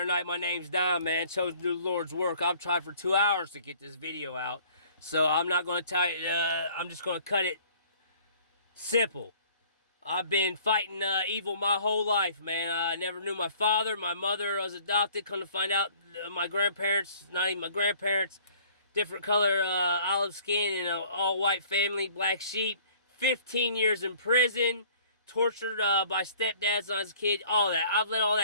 tonight? My name's Don, man. Chosen to do the Lord's work. I've tried for 2 hours to get this video out, so I'm not going to I'm just going to cut it simple. I've been fighting evil my whole life, man. I never knew my father. My mother was adopted. Come to find out, my grandparents, not even my grandparents, different color, olive skin, and an all-white family, black sheep. 15 years in prison, tortured by stepdads when I was a kid, all that. I've let all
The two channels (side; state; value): both; inverted; correlation -0.54